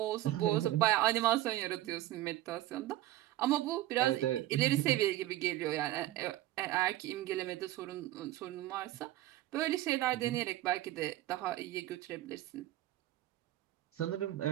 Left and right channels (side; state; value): left; quieter; 15.2 dB